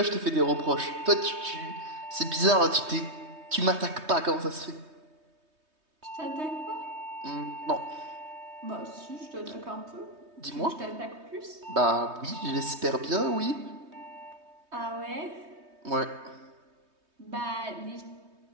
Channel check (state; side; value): late; left; 3.2 ms